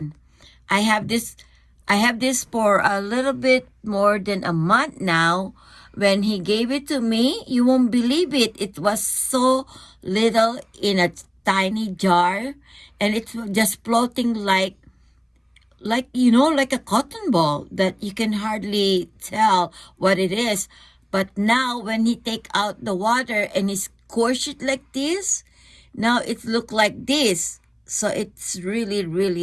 I have this for a little bit more than a month now. When he gave it to me, you won't believe it. It was so little in a tiny jar, and it's just floating like like a cotton ball that you can hardly tell what it is. But now when he take out the water and he squish it like this, now it look like this. So it's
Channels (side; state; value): both; identical; correlation 1.00